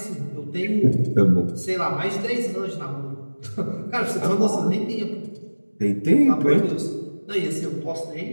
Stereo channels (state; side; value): inverted; both; correlation -1.00